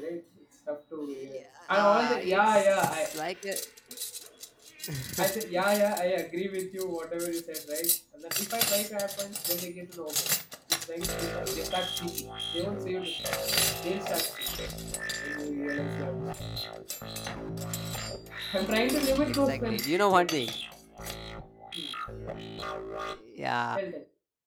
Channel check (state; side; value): identical; both; correlation 1.00